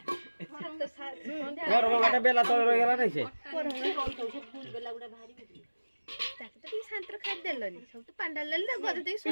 घर बाटा बेला तळ गेला नै से फूल बेला उडा भारी ताके तो शांतर खाद देलनी सब तो पांडाल ले गद दे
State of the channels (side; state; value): both; inverted; correlation -1.00